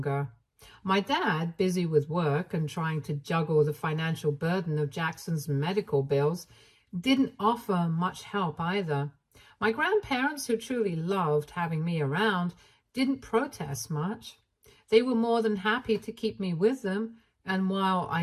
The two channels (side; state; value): both; identical; correlation 1.00